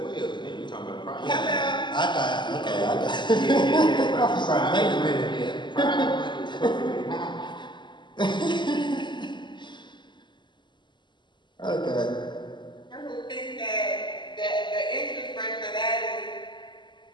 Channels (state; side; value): late; right; 0.22 ms